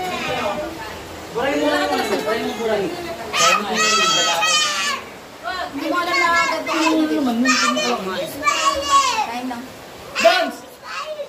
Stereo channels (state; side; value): identical; both; correlation 1.00